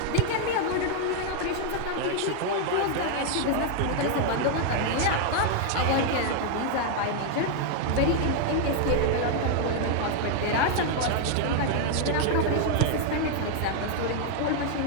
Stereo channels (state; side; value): different; both; correlation 0.00